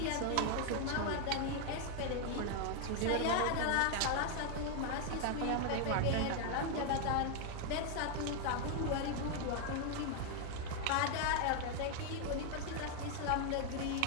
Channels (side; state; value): both; different; correlation 0.00